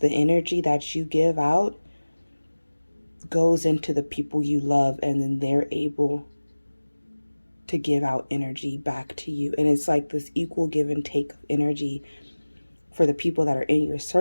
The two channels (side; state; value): both; inverted; correlation -1.00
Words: energy that you give out goes into the people you love, and then they're able to give out energy back to you. And it's like this equal give and take of energy for the people that are in your